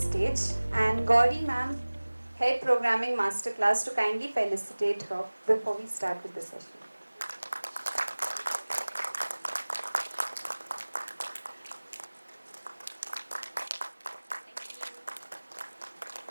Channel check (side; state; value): both; inverted; correlation -1.00